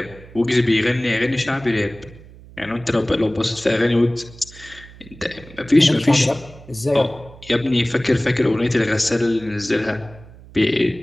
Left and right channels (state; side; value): noise; right; hum, 20 dB below the sound